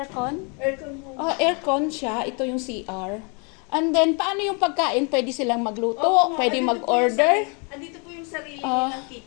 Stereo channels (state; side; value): quieter; right; 35.0 dB